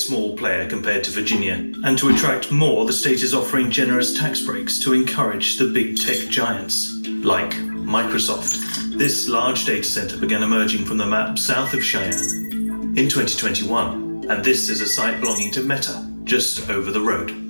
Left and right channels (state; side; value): inverted; both; correlation -1.00